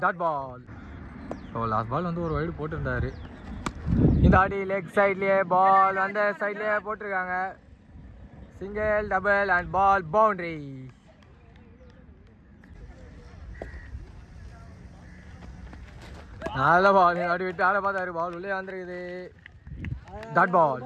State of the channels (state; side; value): identical; both; correlation 1.00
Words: dot ball. So last ball வந்து ஒரு வைடு போட்டிருந்தாரு. இந்த ஆட்டி லெக் சைட்லேயே பால் அந்த சைட்லேயே போட்டிருக்காங்க. Single, double and ball boundary. நல்ல பால், அப்படி விட்டு ஆட பார்த்தாரு, பால் உள்ளே வந்துருக்குது, டாட் பால்.